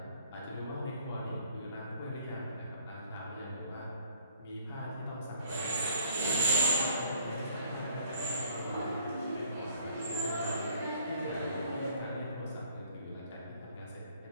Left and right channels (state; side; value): inverted; both; correlation -0.58